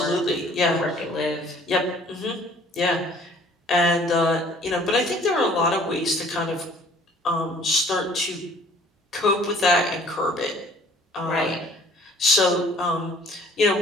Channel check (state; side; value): normal; both; correlation 0.55